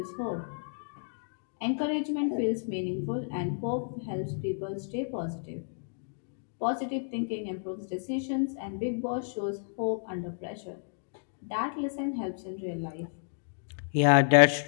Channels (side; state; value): right; silent; digital silence